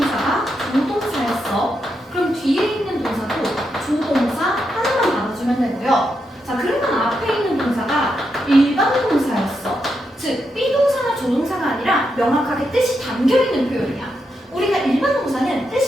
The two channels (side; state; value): both; normal; correlation 0.83